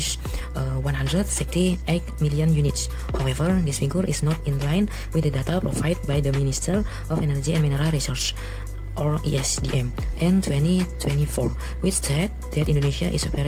168 million units. However, this figure is not in line with the data provided by the Minister of Energy and Mineral Resources, or ESDM, in 2024, which said that Indonesia is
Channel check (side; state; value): both; identical; correlation 1.00